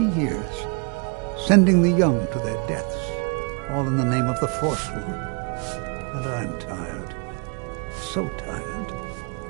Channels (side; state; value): left; quieter; 35.2 dB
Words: years. Sending the young to their deaths, all in the name of the Forsworn. And I'm tired. So tired.